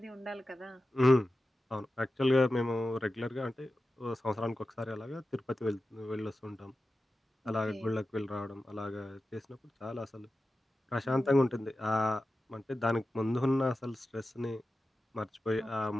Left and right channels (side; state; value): both; normal; correlation 0.93